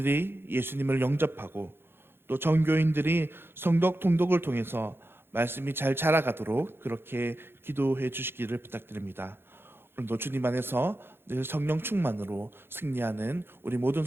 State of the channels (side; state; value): left; late; 0.11 ms